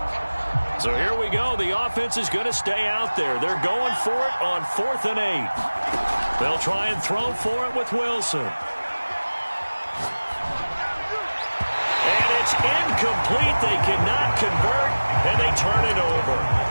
So here we go. The offense is going to stay out there. They're going for it on 4th and 8. They'll try and throw for it with Wilson. And it's incomplete. They cannot convert, and they turn it over.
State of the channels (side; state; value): both; inverted; correlation -1.00